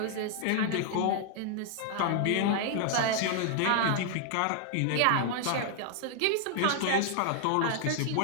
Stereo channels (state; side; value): different; both; correlation 0.00